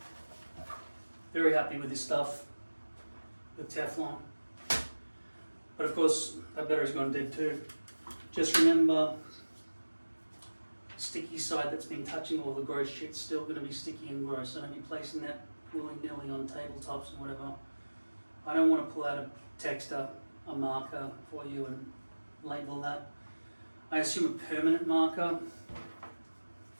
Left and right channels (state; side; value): inverted; both; correlation -1.00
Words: Very happy with this stuff. With Teflon. But of course, that battery's gone dead too. Just remember, sticky side that's been touching all the gross shit's still going to be sticky and gross. So don't be placing that willy-nilly on tabletops and whatever. I don't want to pull out a texter, a marker for you and label that. I assume a permanent marker.